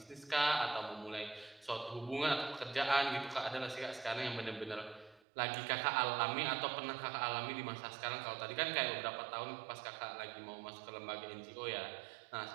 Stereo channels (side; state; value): left; drops out; at 5.2 s